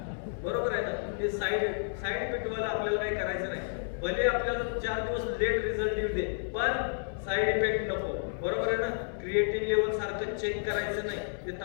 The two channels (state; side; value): silent; right; 57 dB below the other